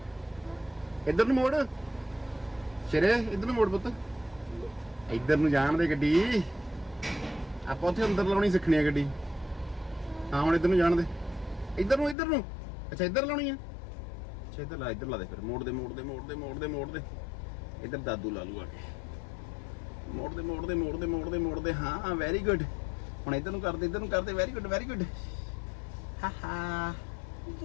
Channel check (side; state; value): right; drops out; at 12.2 s